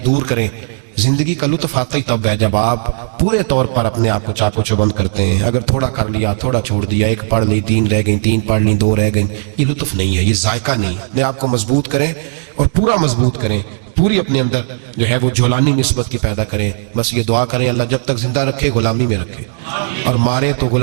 دور کریں. زندگی کا لطف آتا ہی تب ہے جب آپ پورے طور پر اپنے آپ کو چاق و چوبند کرتے ہیں. اگر تھوڑا کر لیا، تھوڑا چھوڑ دیا، 1 پڑھ لی 3 رہ گئیں، 3 پڑھ لی 2 رہ گئیں، یہ لطف نہیں ہے، یہ ذائقہ نہیں. اپنے آپ کو مضبوط کریں اور پورا مضبوط کریں، پوری اپنے اندر جو ہے وہ جولانی نسبت کی پیدا کریں. بس یہ دعا کریں اللہ جب تک زندہ رکھے غلامی میں رکھے، اور مارے تو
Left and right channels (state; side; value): silent; left; digital silence